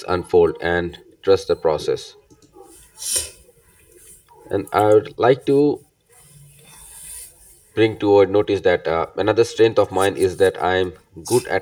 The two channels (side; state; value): both; identical; correlation 1.00